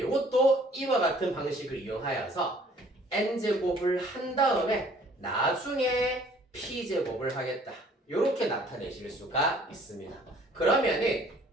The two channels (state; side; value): normal; both; correlation 0.56